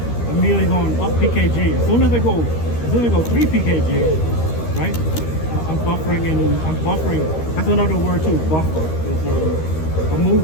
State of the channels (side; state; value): right; late; 13 ms